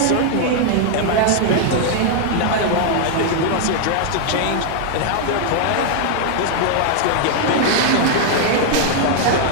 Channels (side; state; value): both; different; correlation 0.00